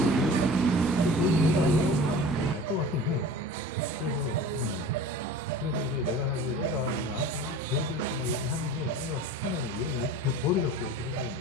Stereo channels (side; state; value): both; normal; correlation 0.39